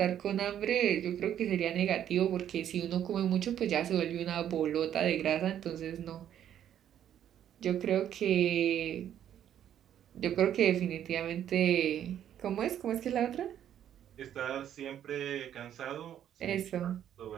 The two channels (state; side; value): quieter; left; 10.3 dB